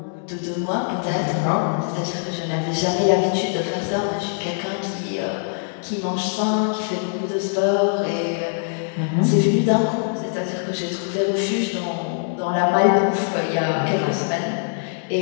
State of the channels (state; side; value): silent; right; digital silence